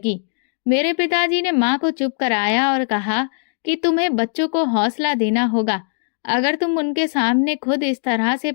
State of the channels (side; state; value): right; silent; digital silence